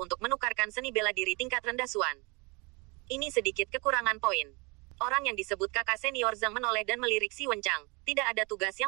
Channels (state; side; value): quieter; left; 28.6 dB